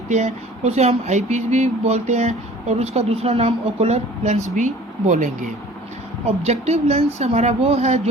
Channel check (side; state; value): both; normal; correlation 0.47